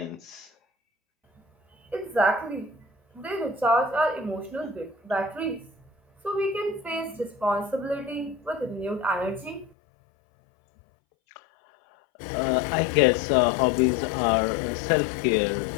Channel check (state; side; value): drops out; right; at 9.7 s